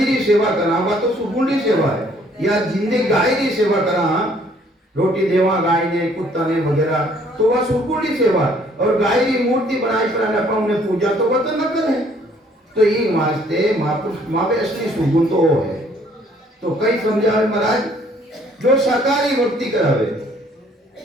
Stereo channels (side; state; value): both; normal; correlation 0.61